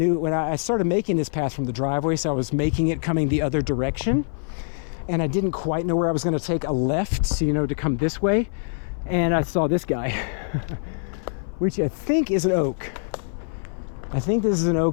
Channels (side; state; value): right; silent; 58 dB below the other